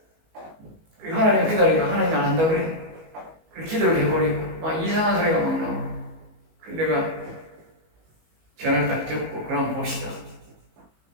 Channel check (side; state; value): left; late; 19 ms